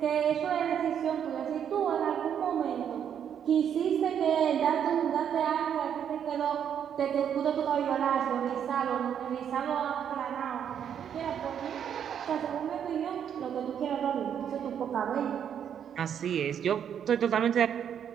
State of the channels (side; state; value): left; quieter; 8.6 dB